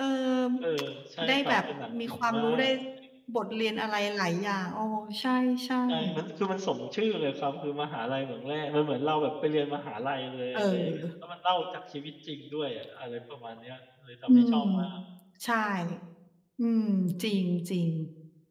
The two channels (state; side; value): identical; both; correlation 1.00